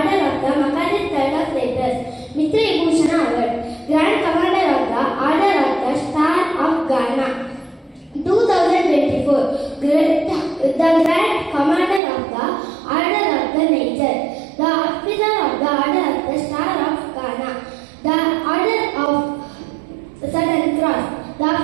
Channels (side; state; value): left; drops out; at 12.0 s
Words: of the Makadis Third of Letters, Mitra Bhushan Award, Grand Commander of the Order of the Star of Ghana 2024, the Grand Commander of the Order of the Nature, the Officer of the Order of the Star of Ghana, the Order of Southern Cross, the